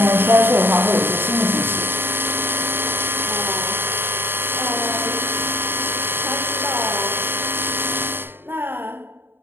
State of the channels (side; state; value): left; late; 0.10 ms